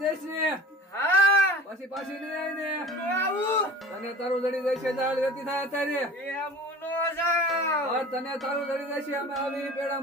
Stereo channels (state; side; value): normal; both; correlation 0.41